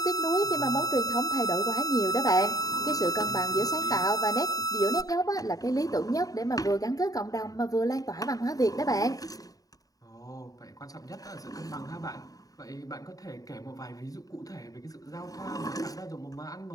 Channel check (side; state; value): right; late; 0.18 ms